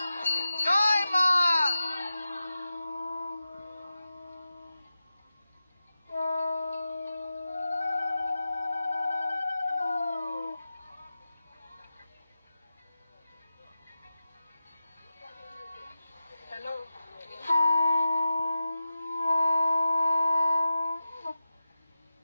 জয়, মা হ্যালো।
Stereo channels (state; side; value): inverted; both; correlation -0.93